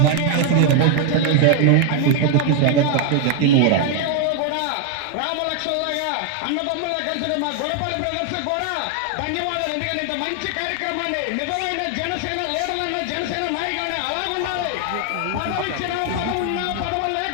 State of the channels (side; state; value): both; different; correlation 0.00